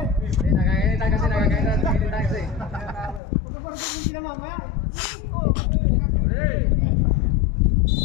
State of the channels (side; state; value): right; drops out; at 3.2 s